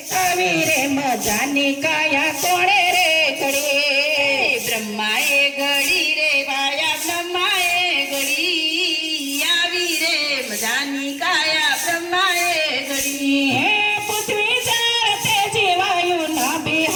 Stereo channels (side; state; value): both; identical; correlation 1.00